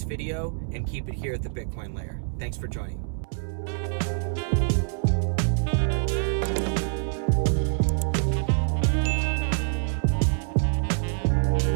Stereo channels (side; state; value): left; silent; 61 dB below the other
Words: video, and keep it here at the Bitcoin Layer. Thanks for joining.